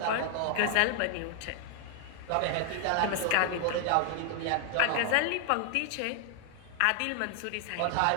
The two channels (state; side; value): different; both; correlation 0.00